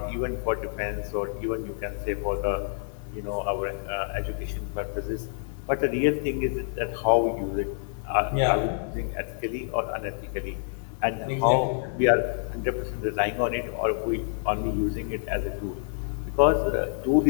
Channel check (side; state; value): right; silent; digital silence